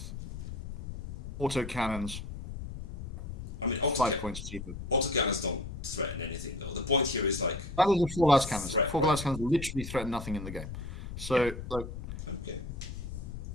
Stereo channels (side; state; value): left; noise; rumble, 8 dB below the sound